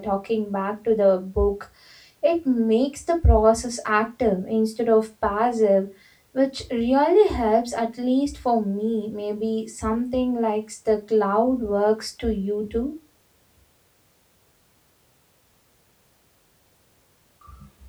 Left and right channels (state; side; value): identical; both; correlation 1.00